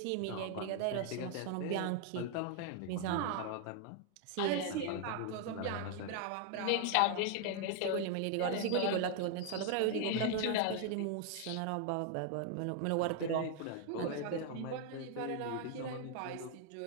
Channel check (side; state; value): both; different; correlation 0.00